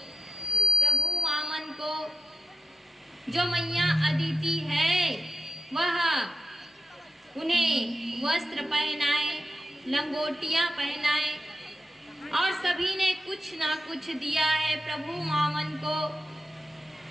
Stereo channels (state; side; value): normal; both; correlation 0.87